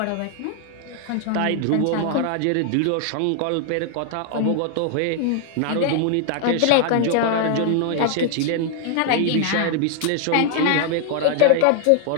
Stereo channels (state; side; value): different; both; correlation 0.00